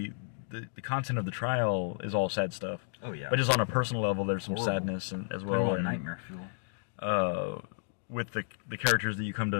the content of the trial is all sad stuff. Oh yeah. But just on a personal level, there's some sadness as well. And nightmare fuel. With the characters that you come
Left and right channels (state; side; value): silent; right; digital silence